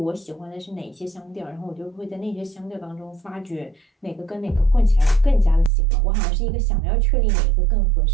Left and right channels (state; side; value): drops out; left; at 5.7 s